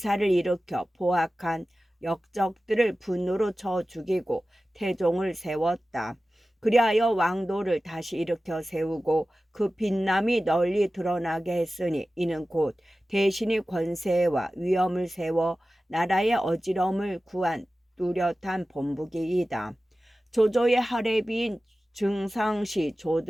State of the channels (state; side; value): normal; both; correlation 0.95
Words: 일으켜 포악한 역적들을 분노로 쳐 죽이고 태종을 세웠다. 그리하여 왕도를 다시 일으켜 세우고 그 빛남이 널리 드러나게 했으니 이는 곧 대신이 권세와 위엄을 세워 나라의 어지러움을 구한 뚜렷한 본보기이다. 조조의 하례비인 증상시